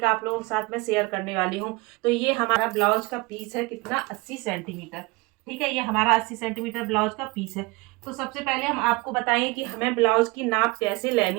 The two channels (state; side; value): quieter; left; 24.2 dB